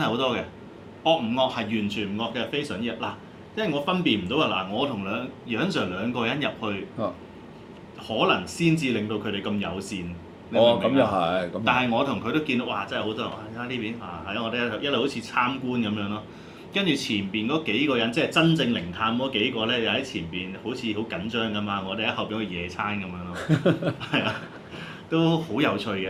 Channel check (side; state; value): both; identical; correlation 1.00